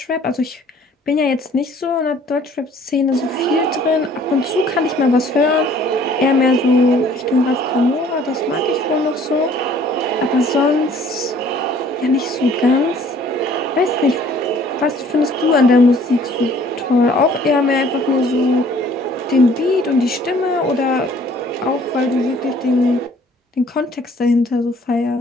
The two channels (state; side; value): normal; both; correlation 0.56